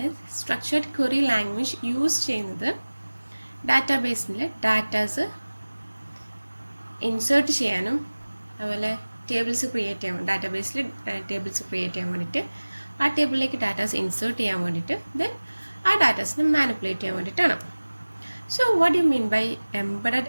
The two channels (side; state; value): both; inverted; correlation -1.00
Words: structured query language use ചെയ്യുന്നത് ഡാറ്റാബേസിൽ ഡാറ്റാസ് ഇൻസേർട്ട് ചെയ്യാനും അതുപോലെ ടേബിൾസ് ക്രിയേറ്റ് ചെയ്യാൻ ഡാറ്റാബേസിൽ ടേബിൾസ് ക്രിയേറ്റ് ചെയ്യാൻ വേണ്ടിയിട്ട് ആ ടേബിളിലേക്ക് ഡാറ്റാസ് ഇൻസേർട്ട് ചെയ്യാൻ വേണ്ടിയിട്ട് ദെൻ ആ ഡാറ്റാസിനെ മാനിപ്പുലേറ്റ് ചെയ്യാൻ വേണ്ടിയിട്ടാണ്. So what you mean by embedded